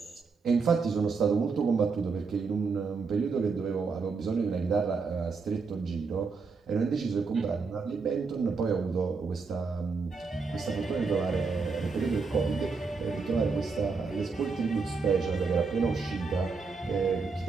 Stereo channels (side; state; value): left; quieter; 4.7 dB